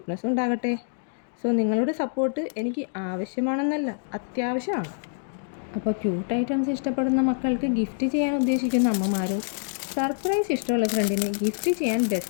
ഉണ്ടാകട്ടെ. സോ നിങ്ങളുടെ സപ്പോർട്ട് എനിക്ക് ആവശ്യമാണെന്നല്ല, അത്യാവശ്യമാണ്. അപ്പോൾ ക്യൂട്ട് ഐറ്റംസ് ഇഷ്ടപ്പെടുന്ന മക്കൾക്ക് ഗിഫ്റ്റ് ചെയ്യാൻ ഉദ്ദേശിക്കുന്ന അമ്മമാരും സർപ്രൈസ് ഇഷ്ടമുള്ള ഫ്രണ്ടിന് ഗിഫ്റ്റ് ചെയ്യാൻ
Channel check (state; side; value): silent; right; digital silence